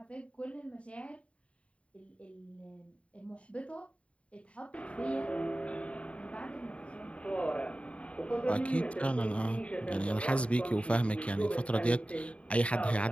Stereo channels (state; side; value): late; right; 0.062 ms